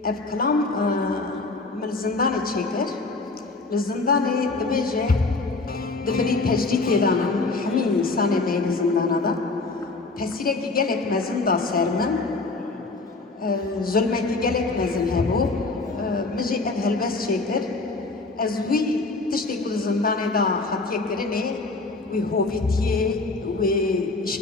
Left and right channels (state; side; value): quieter; right; 3.5 dB